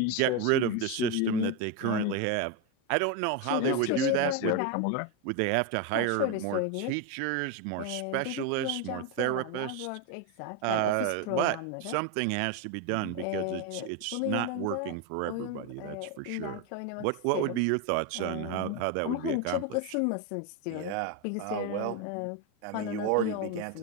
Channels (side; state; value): both; different; correlation 0.02